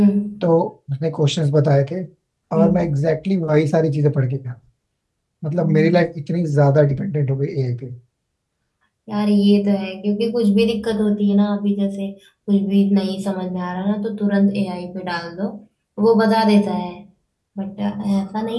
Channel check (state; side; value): identical; both; correlation 1.00